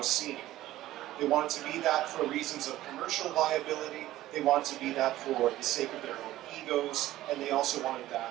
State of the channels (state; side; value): quieter; left; 15.0 dB